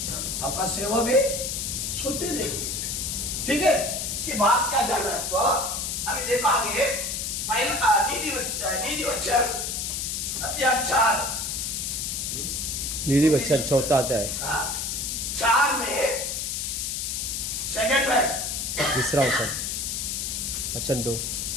आपका सेवा भी सोते रहेगी। ठीक है, इसके बाद क्या जाना है आपको, अभी देखो आगे पहला नीति वचन अध्याय 4 नीति वचन 4 अध्याय 4 में सेकंड वर्स, तीसरा वचन 2,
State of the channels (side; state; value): left; noise; hiss, 2 dB below the sound